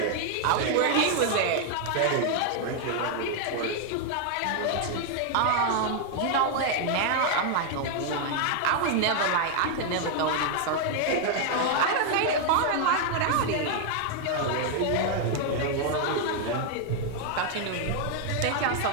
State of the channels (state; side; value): different; both; correlation 0.00